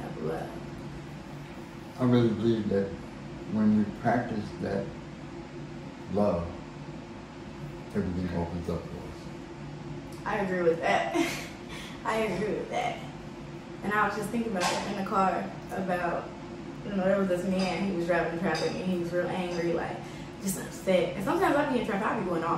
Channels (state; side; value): identical; both; correlation 1.00